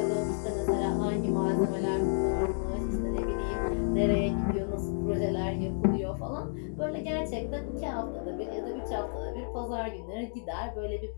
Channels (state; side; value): silent; right; digital silence